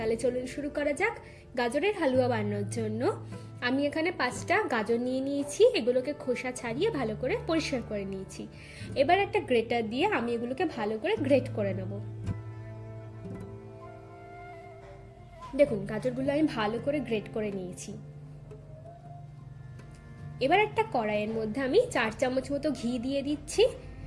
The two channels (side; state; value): both; identical; correlation 1.00